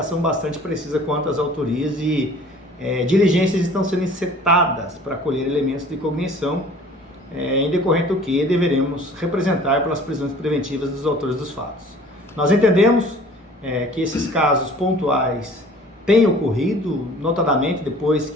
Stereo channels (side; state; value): both; normal; correlation 0.49